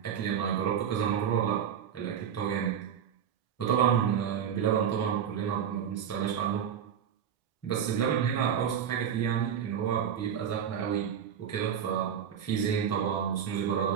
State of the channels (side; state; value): left; quieter; 8.4 dB